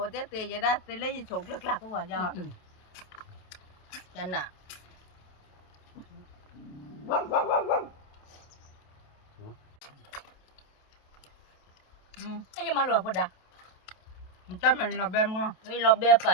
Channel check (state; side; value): late; right; 28 ms